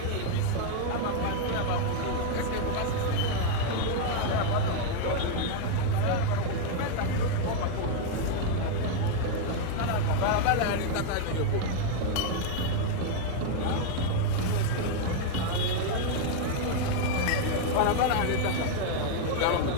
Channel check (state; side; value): different; both; correlation 0.00